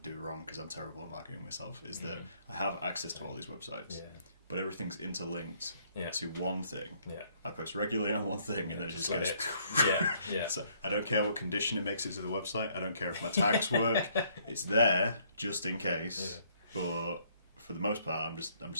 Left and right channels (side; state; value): both; inverted; correlation -0.66